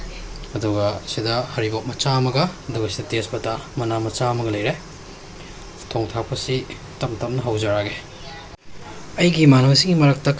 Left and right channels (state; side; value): identical; both; correlation 1.00